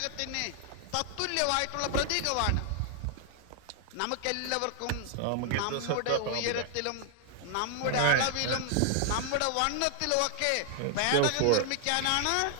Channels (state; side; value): different; both; correlation 0.00